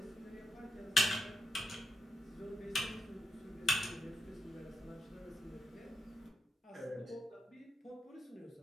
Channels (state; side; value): normal; both; correlation 0.83